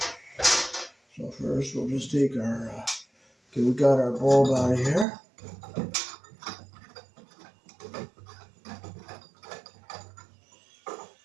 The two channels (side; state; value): left; drops out; at 5.1 s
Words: So first we'll just take our, okay, we got our bulb out of here.